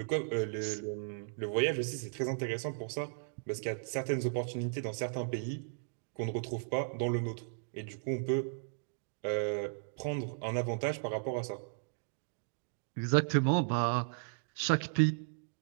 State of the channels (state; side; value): silent; left; digital silence